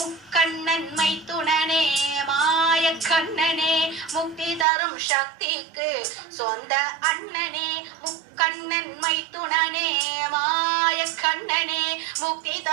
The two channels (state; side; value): drops out; left; at 4.7 s